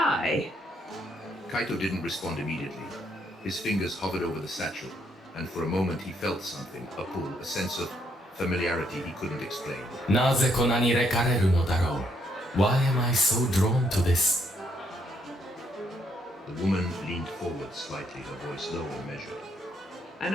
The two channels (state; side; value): normal; both; correlation 0.73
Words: Kaito didn't respond immediately. His fingers hovered over the satchel, and for a moment he felt something, a pull, a sense of familiarity he couldn't explain. なぜこんなに惹かれるのだろう? Why am I so drawn to this? The woman leaned forward slightly, her voice low and measured. あ